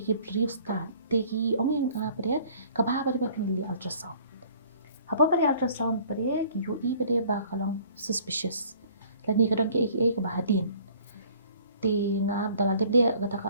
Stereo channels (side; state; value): both; inverted; correlation -0.55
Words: brief start. Teki ong yang pada kabah pada pendili ultrasound. Apa pada ultrasound pada ki UI pada bakalong suspicious. Lani kadang ke kabah hadin. Ti ngap dalam dia kata